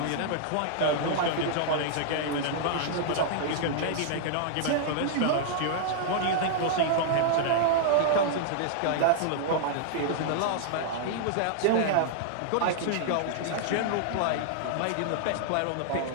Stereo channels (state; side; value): different; both; correlation -0.01